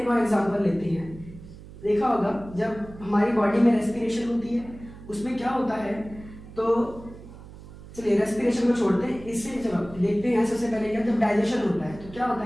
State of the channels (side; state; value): right; noise; hum, 17 dB below the sound